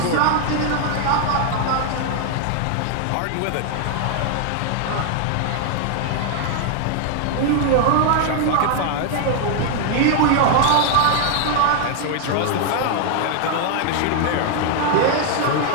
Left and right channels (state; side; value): different; both; correlation 0.00